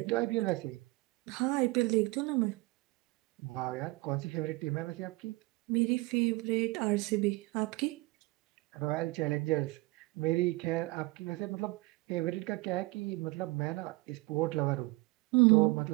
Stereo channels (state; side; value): quieter; left; 23.5 dB